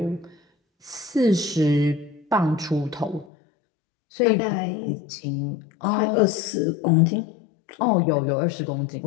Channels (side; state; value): right; drops out; at 3.2 s